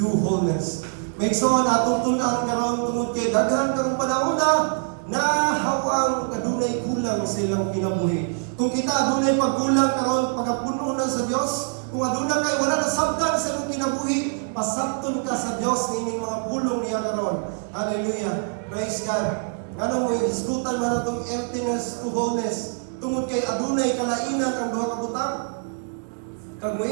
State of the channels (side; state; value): left; silent; digital silence